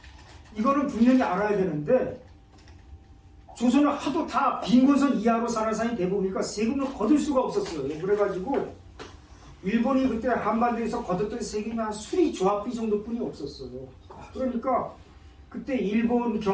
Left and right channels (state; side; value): identical; both; correlation 1.00